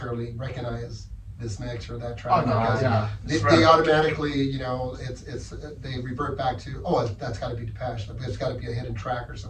recognize this mix or that track. Oh, no, because they automatically, you know, they revert back to, oh, that's got to be Depeche. There's got to be a hidden track or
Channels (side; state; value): both; identical; correlation 1.00